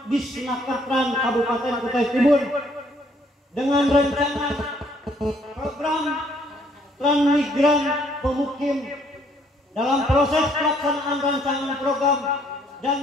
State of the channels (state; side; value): normal; both; correlation 0.65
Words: Disnakertran Kabupaten Kutai Timur dengan rencana program transmigran pemukim dalam proses pelaksanaan rancangan program dan